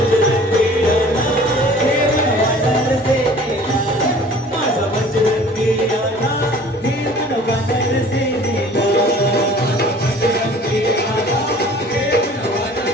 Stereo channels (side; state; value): both; normal; correlation 0.48